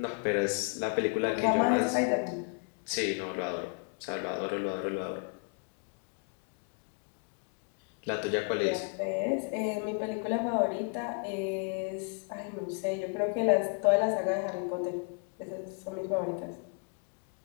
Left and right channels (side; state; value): right; quieter; 39.2 dB